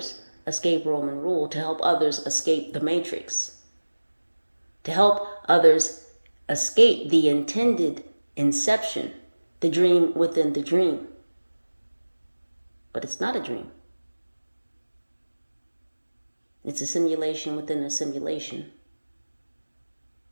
escape Roman rule, to help others escape the matrix, to help others escape the intended inception, the dream within the dream. But it's not a dream. It's a simulation within a simulation.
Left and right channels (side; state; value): both; inverted; correlation -1.00